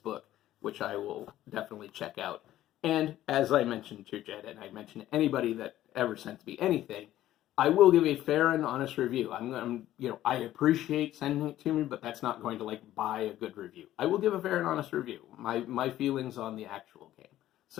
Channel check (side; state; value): right; quieter; 13.6 dB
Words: which I will definitely check out. And as I mentioned to Jed, and I mentioned to anybody that ever sends me anything, I will give a fair and honest review. I appreciate sending it to me, but that's not going to buy a good review. I will give a fair and honest review. My feelings on the actual game.